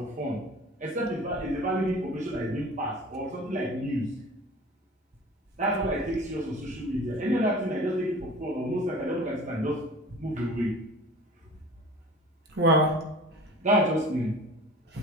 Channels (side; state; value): both; normal; correlation 0.42